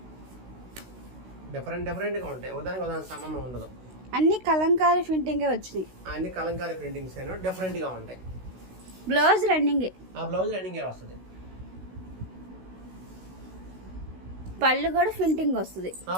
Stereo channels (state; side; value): late; left; 16 ms